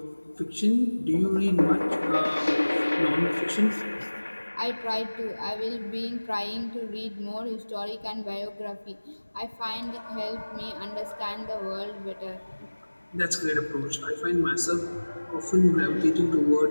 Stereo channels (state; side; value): inverted; both; correlation -1.00